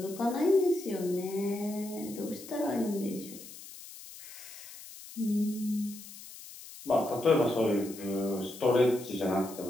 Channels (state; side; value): noise; left; hiss, 15 dB below the sound